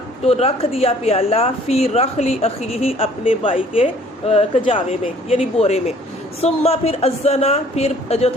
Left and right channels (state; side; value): normal; both; correlation 0.56